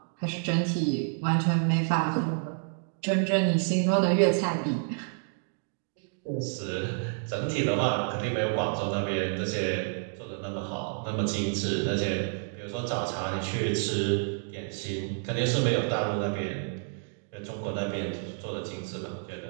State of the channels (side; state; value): left; silent; 58 dB below the other